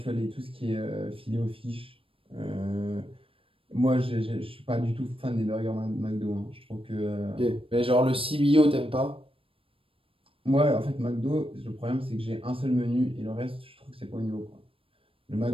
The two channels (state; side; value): late; left; 0.26 ms